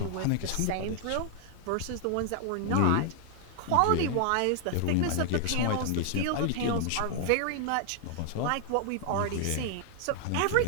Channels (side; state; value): both; different; correlation 0.00